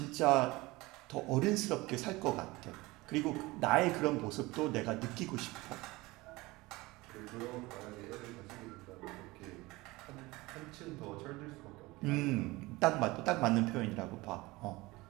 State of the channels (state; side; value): quieter; left; 21.4 dB